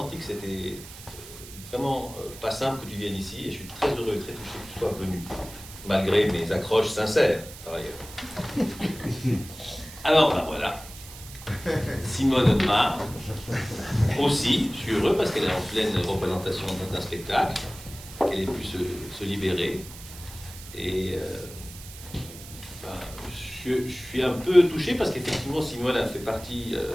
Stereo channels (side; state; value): right; noise; hiss, 15 dB below the sound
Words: que c'était vraiment pas simple que tu viennes ici, et je suis très heureux et très touché que tu sois venu, malgré mes accroches sincères, par ailleurs. Alors, ben voilà. Simone Audemars, aussi, je suis heureux parce qu'elle est en pleine représentation d'un spectacle, qu'elle ait pu se libérer. Et je suis un peu touché parce qu'effectivement Simone a fait partie,